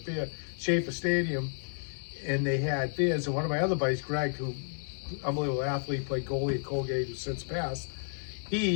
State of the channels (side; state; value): right; silent; digital silence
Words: Schaefer Stadium, and they had beers. And one of my other buddies, Greg, who, unbelievable athlete, played goalie at Colgate, who's since passed,